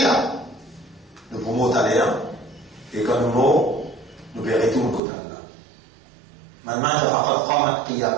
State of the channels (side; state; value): left; drops out; at 5.0 s